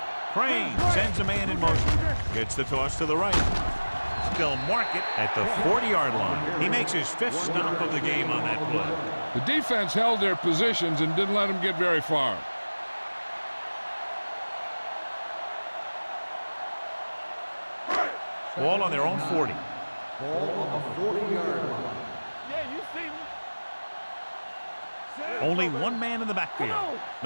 Crane sends a man in motion. Gets the toss to the right. They'll mark it at the 40-yard line. He makes his fifth stop of the game on that play. The defense held their positions and didn't let them get very far. Ball on their own 40. Ball on the 40-yard line. Yeah, you see me. Only one man in the backfield.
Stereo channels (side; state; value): both; inverted; correlation -1.00